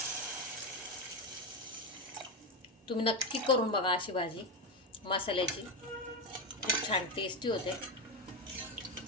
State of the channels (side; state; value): both; normal; correlation 0.12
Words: तुम्ही नक्की करून बघा अशी भाजी मसाल्याची. खूप छान टेस्टी होते.